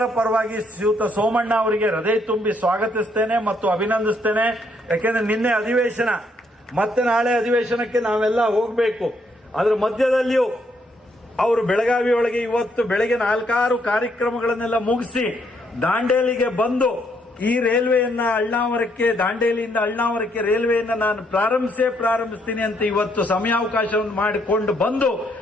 ಪರವಾಗಿ ಶ್ರೀಯುತ ಸೋಮಣ್ಣ ಅವರಿಗೆ ಹೃದಯ ತುಂಬಿ ಸ್ವಾಗತಿಸ್ತೇನೆ ಮತ್ತು ಅಭಿನಂದಿಸ್ತೇನೆ. ಯಾಕೆಂದ್ರೆ ನಿನ್ನೆ ಅಧಿವೇಶನ, ಮತ್ತೆ ನಾಳೆ ಅಧಿವೇಶನಕ್ಕೆ ನಾವೆಲ್ಲ ಹೋಗಬೇಕು. ಅದರ ಮಧ್ಯದಲ್ಲಿಯೂ ಅವರು ಬೆಳಗಾವಿ ಒಳಗೆ ಇವತ್ತು ಬೆಳಗ್ಗೆ 4-6 ಕಾರ್ಯಕ್ರಮಗಳನ್ನೆಲ್ಲ ಮುಗಿಸಿ ದಾಂಡೇಲಿಗೆ ಬಂದು ಈ ರೈಲ್ವೆಯನ್ನ ಅಳ್ನಾವರಕ್ಕೆ, ದಾಂಡೇಲಿಯಿಂದ ಅಳ್ನಾವರಕ್ಕೆ ರೈಲ್ವೆಯನ್ನ ನಾನು ಪ್ರಾರಂಭಿಸ್ತೀನಿ ಅಂತ ಇವತ್ತು ಸಮಯಾವಕಾಶವನ್ನು ಮಾಡಿಕೊಂಡು ಬಂದು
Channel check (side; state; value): both; normal; correlation 0.72